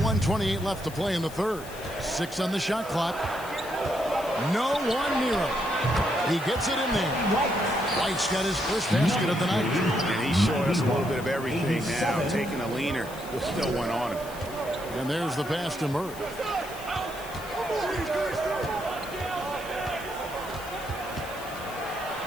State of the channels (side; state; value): left; noise; hiss, 17 dB below the sound